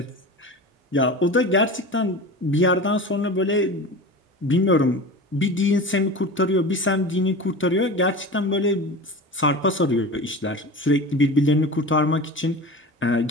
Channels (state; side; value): normal; both; correlation 0.32